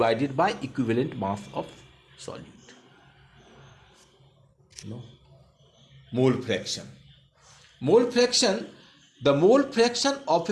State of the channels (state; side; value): identical; both; correlation 1.00